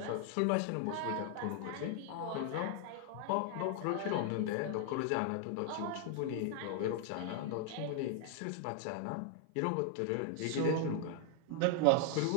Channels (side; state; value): both; different; correlation 0.00